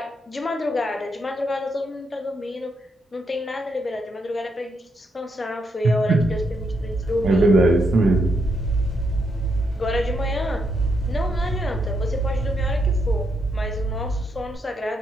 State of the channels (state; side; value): normal; both; correlation 0.79